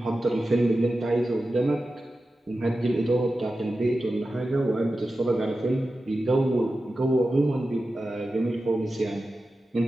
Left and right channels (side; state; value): both; normal; correlation 0.93